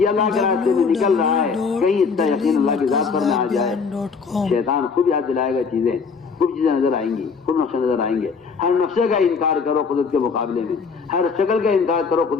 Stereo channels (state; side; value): quieter; right; 5.3 dB